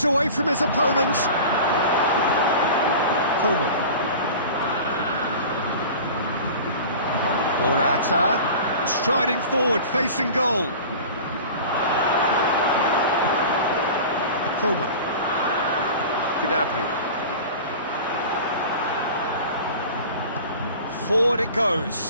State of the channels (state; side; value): inverted; both; correlation -0.37